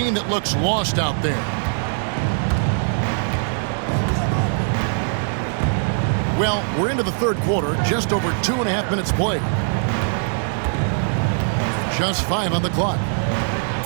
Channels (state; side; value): silent; left; digital silence